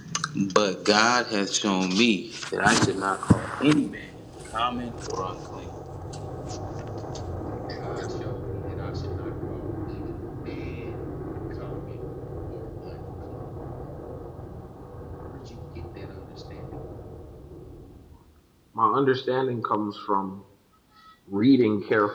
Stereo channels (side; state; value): both; identical; correlation 1.00